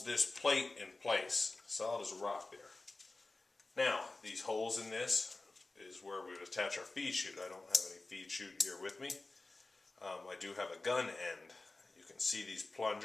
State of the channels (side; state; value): right; quieter; 3.2 dB